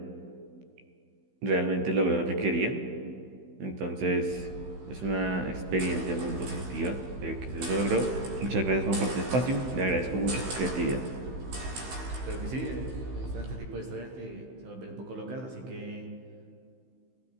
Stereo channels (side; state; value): left; late; 16 ms